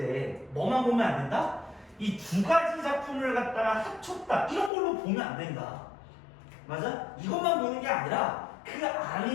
뭐만 보면 안 된다? 이 두 가지 작품을 갖다가 합쳤다 이런 걸로 보면 안 된다. 맞아? 이것만 보는 게 아니라 그 안에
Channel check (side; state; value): right; drops out; at 4.7 s